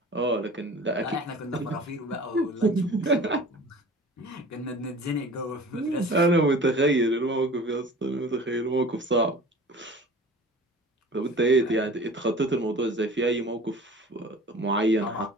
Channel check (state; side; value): normal; both; correlation 0.42